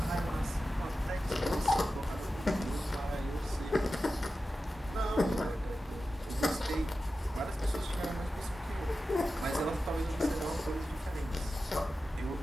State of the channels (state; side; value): normal; both; correlation 0.93